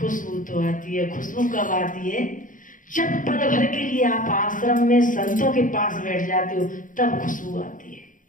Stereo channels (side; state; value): right; late; 0.38 ms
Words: तो आती है। खुशबू कब आती है? जब पल भर के लिए आप आश्रम में संतों के पास बैठ जाते हो, तब खुशबू आती है।